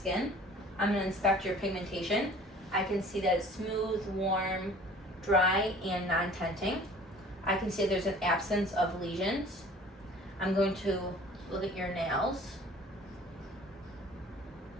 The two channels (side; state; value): both; normal; correlation 0.48